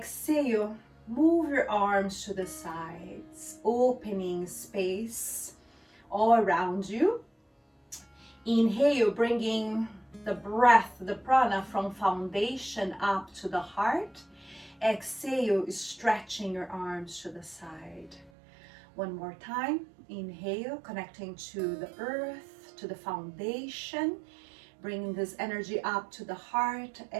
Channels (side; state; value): left; drops out; at 18.3 s